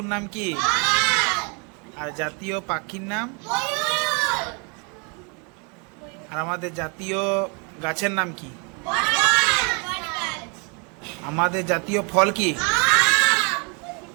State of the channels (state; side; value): quieter; left; 33.9 dB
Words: নাম কি? আর জাতীয় পাখির নাম? আর আমাদের জাতীয় গাছের নাম কি? আমাদের জাতীয় ফল কি?